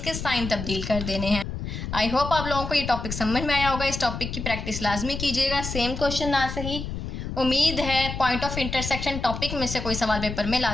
साइन तब्दील कर देने हैं। आई होप आप लोगों को ये टॉपिक समझ में आया होगा। इस टॉपिक की प्रैक्टिस लाजमी कीजिएगा। सेम क्वेश्चन ना सही, उम्मीद है पॉइंट ऑफ इंटरसेक्शन टॉपिक में से कोई सवाल पेपर में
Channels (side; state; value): left; noise; rumble, 6 dB below the sound